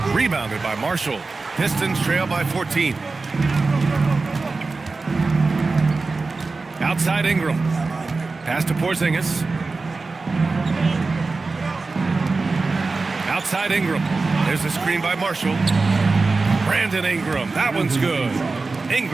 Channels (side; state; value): left; quieter; 3.9 dB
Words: Rebounded by Marshall. Pistons trail by 14. Outside Ingram. Pass to Porzingis. Outside Ingram. There's a screen by Marshall. Brandon Ingram. That one's good.